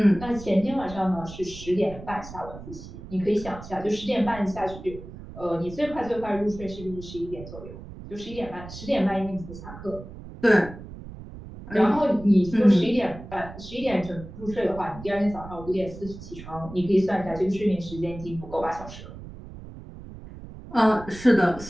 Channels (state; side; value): noise; right; rumble, 14 dB below the sound